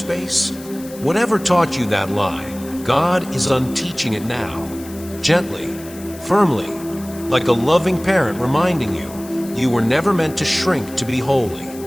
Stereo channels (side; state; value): left; noise; hiss, 18 dB below the sound